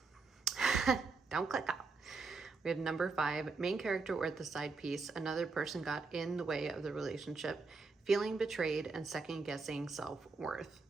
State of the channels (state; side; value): quieter; left; 4.2 dB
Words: Don't click off. We have number 5, main character or the side piece. Another person got in the way of the relationship, feeling betrayed and second guessing self-worth.